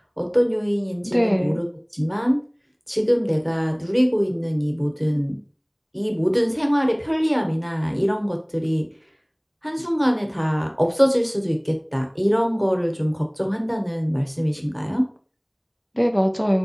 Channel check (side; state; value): both; identical; correlation 1.00